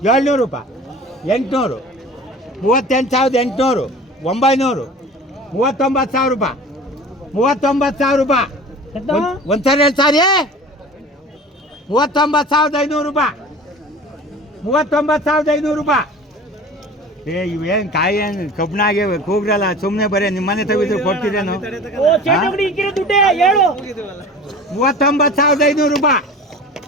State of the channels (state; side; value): normal; both; correlation 0.40